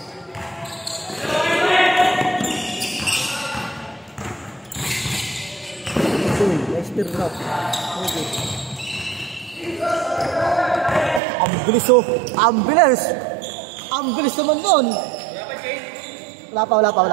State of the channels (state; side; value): drops out; left; at 11.2 s